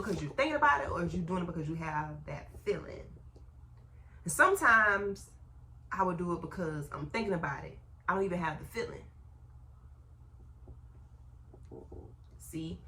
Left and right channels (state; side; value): identical; both; correlation 1.00